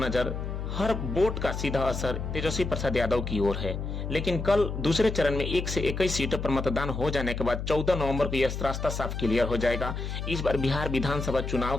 हर वोट का सीधा असर तेजस्वी प्रसाद यादव की ओर है। लेकिन कल दूसरे चरण में 1 से 21 सीटों पर मतदान हो जाने के बाद 14 नवंबर को यह रास्ता साफ क्लियर हो जाएगा। इस बार बिहार विधानसभा चुनाव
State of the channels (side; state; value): left; noise; hum, 5 dB below the sound